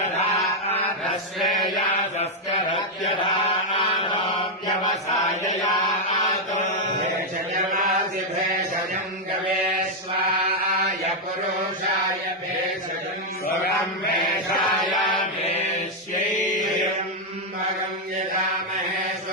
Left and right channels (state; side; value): normal; both; correlation -0.01